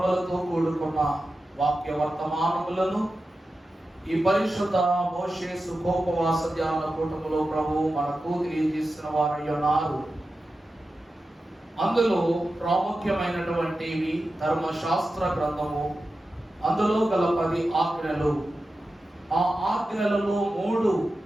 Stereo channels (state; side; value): normal; both; correlation 0.92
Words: కూడుకున్న వాక్య వర్తమానములను ఈ పరిశుద్ధ మోషే సుఖోపవాస ధ్యాన కూటములో ప్రభు మనకు తెలియజేసిన వారై ఉన్నారు. అందులో ప్రాముఖ్యమైనటువంటివి ధర్మశాస్త్ర గ్రంథము, అందులో గల 10 ఆజ్ఞలు. ఆ ఆజ్ఞలలో 3